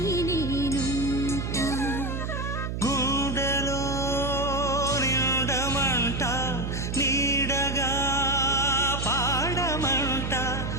నేనుంట గుండెలో నిండమంట నీడగా పాడమంట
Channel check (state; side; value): noise; right; hum, 3 dB below the sound